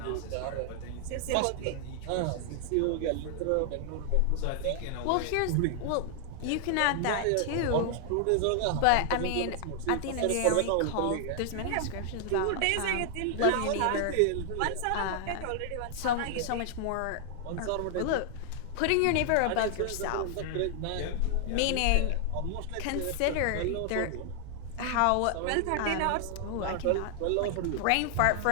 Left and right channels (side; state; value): both; different; correlation 0.00